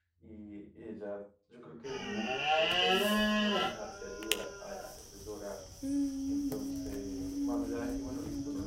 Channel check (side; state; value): both; identical; correlation 1.00